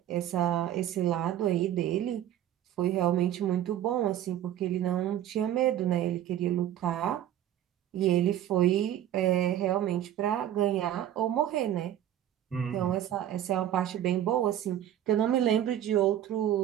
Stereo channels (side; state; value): left; quieter; 11.5 dB